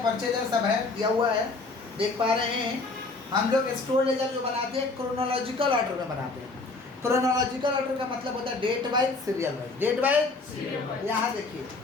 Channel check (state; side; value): quieter; right; 3.6 dB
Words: परचेज है, सब है, दिया हुआ है, देख पा रहे हैं। हम लोग स्टोर लेजर जो बनाते हैं क्रोनोलॉजिकल ऑर्डर में बनाते हैं। क्रोनोलॉजिकल ऑर्डर का मतलब होता है date wise, serial wise. Date wise, यहाँ